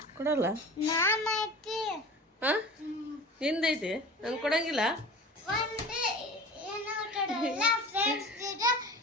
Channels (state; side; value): normal; both; correlation 0.37